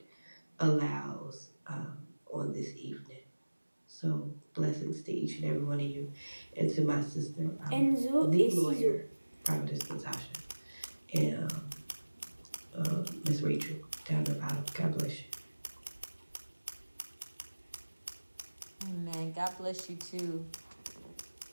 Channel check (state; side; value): inverted; both; correlation -1.00